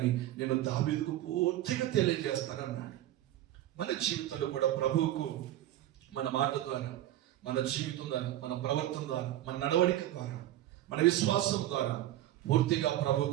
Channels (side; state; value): left; quieter; 13.7 dB